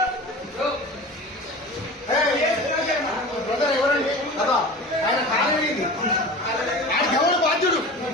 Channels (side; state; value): both; normal; correlation 0.35